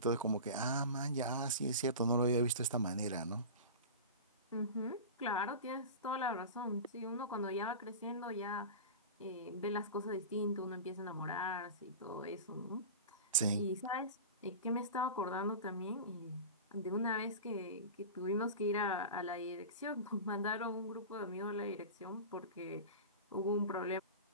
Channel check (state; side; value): inverted; both; correlation -0.31